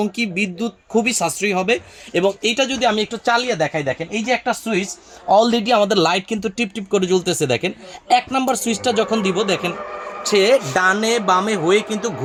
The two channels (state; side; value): identical; both; correlation 1.00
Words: কি বিদ্যুৎ খুবই সাশ্রয়ী হবে। এবং এইটা যদি আমি একটু চালিয়ে দেখাই, দেখেন এই যে একটা সুইচ, অলরেডি আমাদের লাইট কিন্তু টিপ টিপ করে জ্বলতেছে। দেখেন 1 নম্বর সুইচটা যখন দিব, দেখেন সে ডানে বামে হয়ে কিন্তু